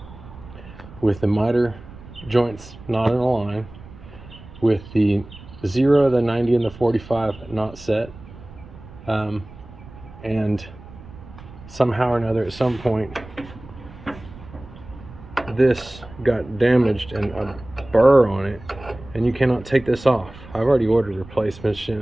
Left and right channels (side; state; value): right; noise; rumble, 18 dB below the sound